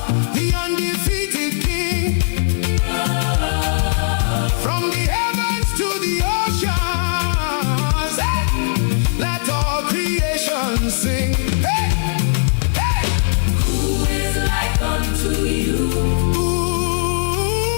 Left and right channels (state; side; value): silent; right; digital silence